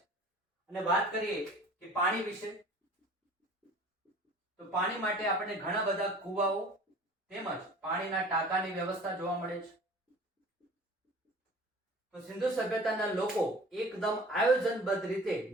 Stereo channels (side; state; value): both; normal; correlation 0.45